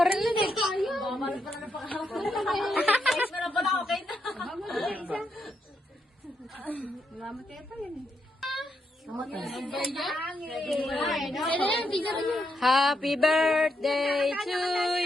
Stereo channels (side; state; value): both; normal; correlation 0.81